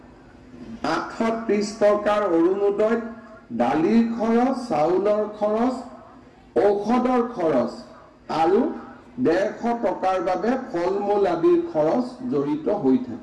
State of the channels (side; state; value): both; identical; correlation 1.00